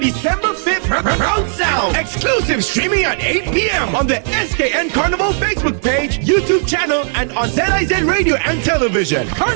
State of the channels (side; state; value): left; silent; digital silence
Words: December 5th, Proud Sound. Exclusive streaming at 8 p.m. on the SKN Carnival Facebook page, YouTube channel, and on ZIZ Radio and Television.